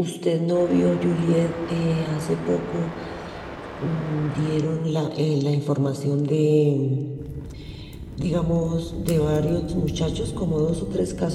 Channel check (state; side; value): identical; both; correlation 1.00